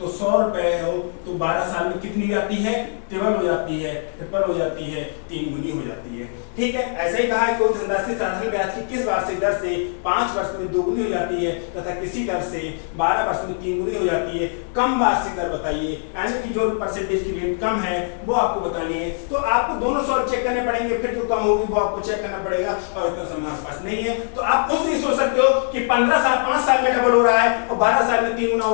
100 रुपए हो तो 12 साल में कितनी हो जाती है? ट्रिपल हो जाती है, ट्रिपल हो जाती है, 3 गुनी हो जाती है। ठीक है, ऐसे ही कहा है कोई धनराशि साधारण ब्याज की किस वार्षिक दर से 5 वर्ष में दोगुनी हो जाती है तथा किसी दर से 12 वर्ष में 3 गुनी हो जाती है? कम वार्षिक दर बताइए, यानी कि जो परसेंटेज की रेट कम है वो आपको बतानी है। तो आपको दोनों सॉल्व चेक करने पड़ेंगे, फिर जो कम होगी वो आपको चेक करना पड़ेगा, और इतना समय आपके पास नहीं है। तो आप खुद नहीं सोच सकते हो कि 5 साल में डबल हो रहा है और 12 साल में 3 गुना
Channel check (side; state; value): right; silent; digital silence